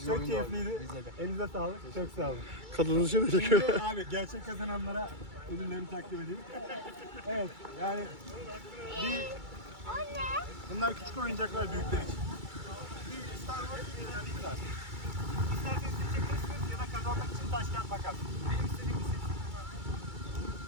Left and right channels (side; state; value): left; late; 2.3 ms